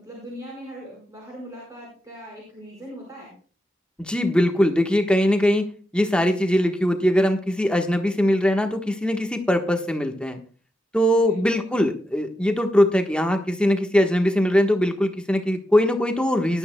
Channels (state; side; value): normal; both; correlation 0.87